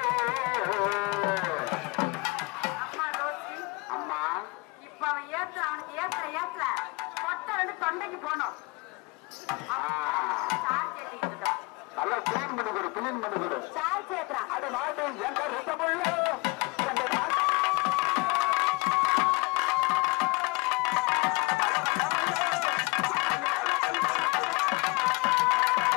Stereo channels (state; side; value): quieter; right; 26.7 dB